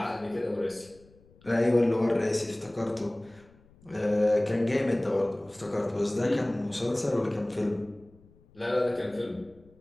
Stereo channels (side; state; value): left; noise; rumble, 28 dB below the sound